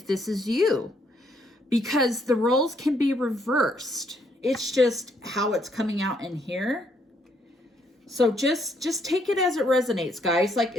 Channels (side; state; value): both; normal; correlation 0.71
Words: this is you. Because the roles can be reversed. It's just how it's coming out in here. So just take it as it resonates, guys. Like,